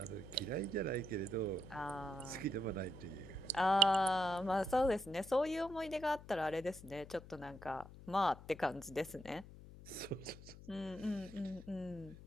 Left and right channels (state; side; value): noise; left; hum, 16 dB below the sound